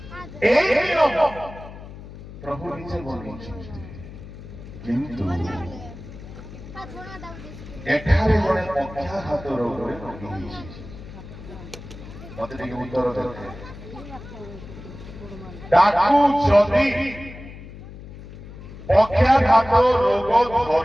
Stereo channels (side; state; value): left; noise; hum, 15 dB below the sound